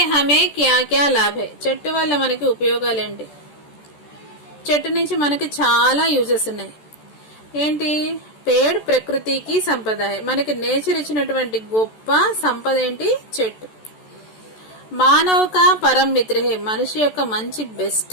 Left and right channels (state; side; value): late; right; 14 ms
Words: हमें क्या क्या लाभ है. చెట్టు వల్ల మనకి ఉపయోగాలు ఏంటి. చెట్టు నుంచి మనకి చాలా యూజెస్ ఉన్నాయి. ఏంటి, పేడ్ ప్రకృతికి సంపద. మనకి నేచర్ ఇచ్చినటువంటి గొప్ప సంపద ఏంటి, చెట్టు. మానవ కా పరమ మిత్ర హై, మనిషి యొక్క మంచి